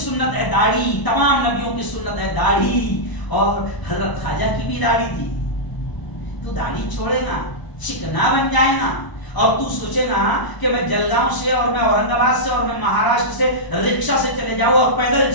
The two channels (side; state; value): right; late; 1.0 ms